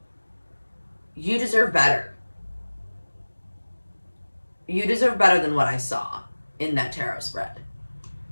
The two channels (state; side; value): inverted; both; correlation -1.00